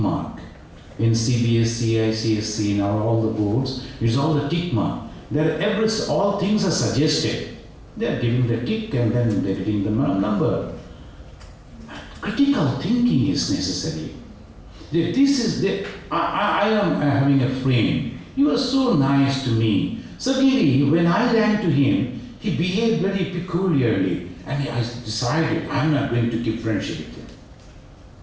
In CBSC, ICSC, now all the boards, it's all the tick mark. All things are suggested. They are giving the tick and then they are getting the number. Critical thinking is necessary. I am having a friend. He was so nice to me. Suddenly, when I ran to him, he behaved very peculiarly. And I decided, I'm not going to keep friendship with him.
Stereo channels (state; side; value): identical; both; correlation 1.00